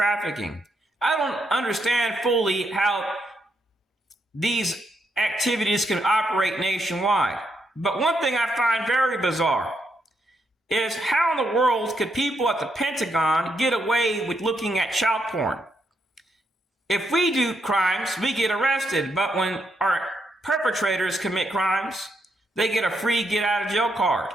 I don't understand fully how these activities can operate nationwide. But one thing I find very bizarre is how in the world could people at the Pentagon get away with looking at child porn? If we do crimes, we get arrested, but when our perpetrators commit crimes, they get a free get out of jail card.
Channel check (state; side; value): normal; both; correlation 0.79